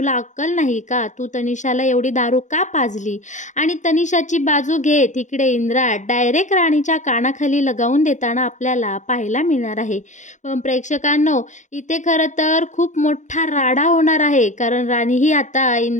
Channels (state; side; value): late; right; 0.35 ms